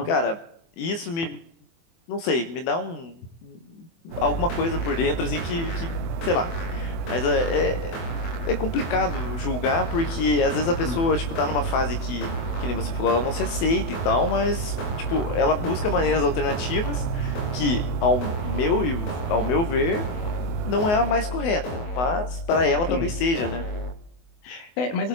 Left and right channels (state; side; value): late; right; 24 ms